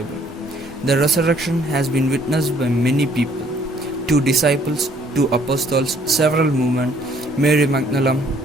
The resurrection has been witnessed by many people. 2 disciples, 2 apostles, several women, Mary Magdalene,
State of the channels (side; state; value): both; normal; correlation 0.62